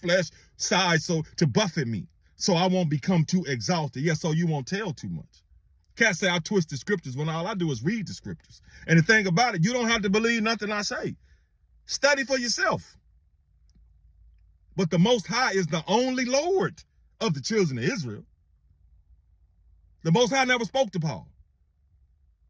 side, so to buffet me, so I won't become too exalted. Yeah, so you won't tell too much. Can't say I twist the scriptures when all I do is read the scriptures. And the thing about it, you don't have to believe nothing I say. Study for yourself. But the Most High is the only Lord of the children of Israel. The Most High never spoke to Paul.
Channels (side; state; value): both; identical; correlation 1.00